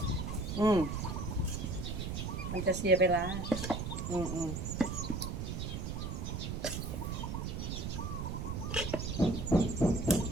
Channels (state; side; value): noise; right; rumble, 4 dB below the sound